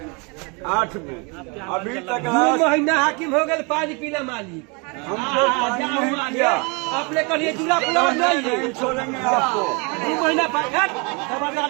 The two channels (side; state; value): left; quieter; 31.3 dB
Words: में अभी तक 2 महीना हाकिम हो गए, पानी पीला मालिक हमको पानी नहीं दिया। अपने कहिए दूल्हा पुलाव नहीं छोड़ेंगे आपको। 2 महीना